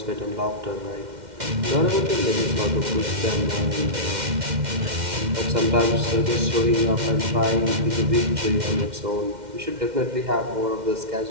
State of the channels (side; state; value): left; late; 2.1 ms